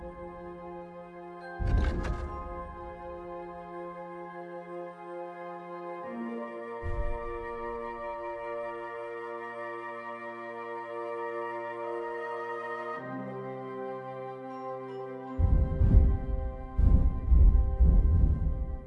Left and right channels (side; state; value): both; identical; correlation 1.00